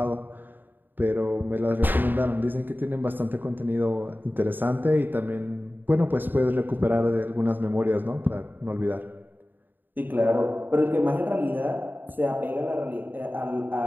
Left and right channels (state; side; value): late; left; 0.091 ms